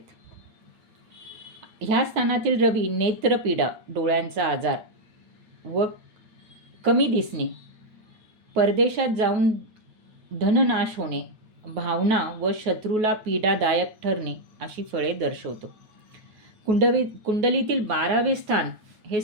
ह्या स्थानातील रवी नेत्रपीडा, डोळ्यांचा आजार व कमी दिसणे, परदेशात जाऊन धननाश होणे, भावना व शत्रूला पीडादायक ठरणे अशी फळे दर्शवतो. कुंडलीतील 12वे स्थान हे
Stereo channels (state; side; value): late; left; 9.4 ms